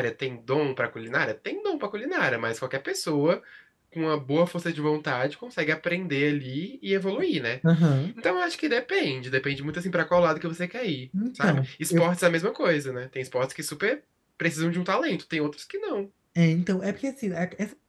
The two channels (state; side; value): identical; both; correlation 1.00